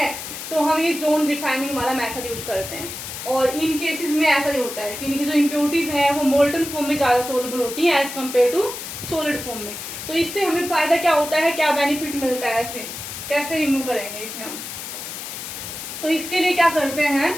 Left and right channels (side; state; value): left; noise; hiss, 8 dB below the sound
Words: तो हम ये जोन रिफाइनिंग वाला मेथड यूज करते हैं, और इन केसेस में ऐसा ही होता है कि इनकी जो इम्प्योरिटीज हैं वो मोल्टन फॉर्म में ज्यादा सोल्यूबल होती हैं as compare to solid form में। तो इससे हमें फायदा क्या होता है, क्या बेनिफिट मिलता है, ऐसे कैसे रिमूव करेंगे इसमें हम। तो इसके लिए क्या करते हैं,